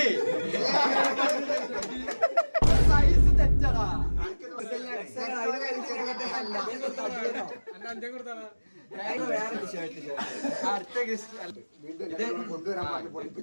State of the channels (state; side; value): inverted; both; correlation -1.00